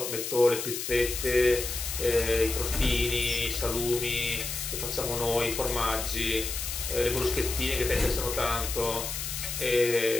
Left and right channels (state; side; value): noise; left; hiss, 5 dB below the sound